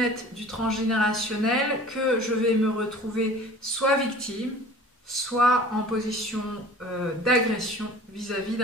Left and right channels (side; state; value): both; normal; correlation 0.44